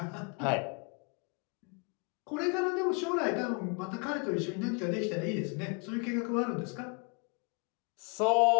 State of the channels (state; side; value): quieter; right; 34.0 dB